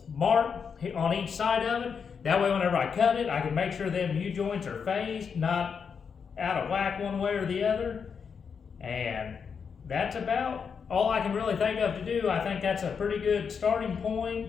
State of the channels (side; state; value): right; quieter; 6.3 dB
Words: mark on each side of it. That way whenever I cut it, I can make sure them U-joints are phased, not out of whack one way or the other. And that's about all I can really think of to do. I think that's a pretty good starting point,